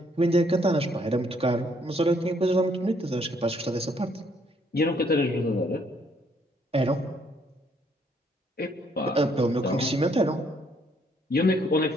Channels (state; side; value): normal; both; correlation 0.68